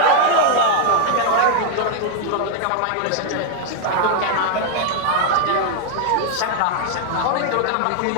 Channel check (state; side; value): different; both; correlation 0.00